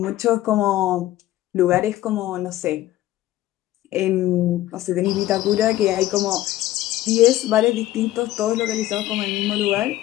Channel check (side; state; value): right; quieter; 14.8 dB